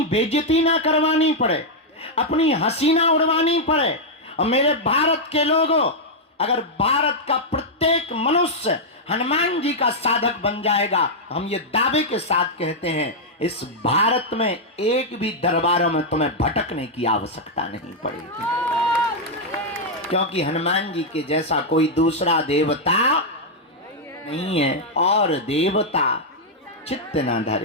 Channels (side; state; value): both; normal; correlation -0.03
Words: बेइज्जती ना करवानी पड़े, अपनी हंसी ना उड़वानी पड़े। और मेरे भारत के लोगों, अगर भारत का प्रत्येक मनुष्य हनुमान जी का साधक बन जाएगा, हम ये दावे के साथ कहते हैं, इस भारत में एक भी दरबारों में तुम्हें भटकने की आवश्यकता नहीं पड़ेगी। क्योंकि हनुमान जी के जैसा कोई दूसरा देवता नहीं है। और देवता चित्त न